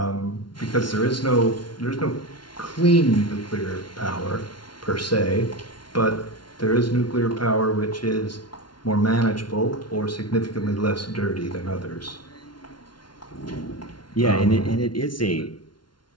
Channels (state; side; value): late; right; 0.71 ms